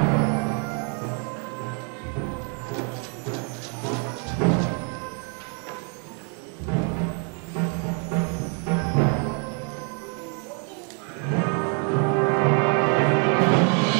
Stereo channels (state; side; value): quieter; left; 37.7 dB